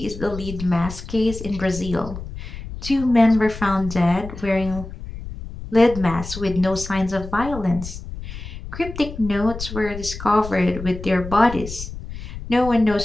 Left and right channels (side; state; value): left; noise; rumble, 10 dB below the sound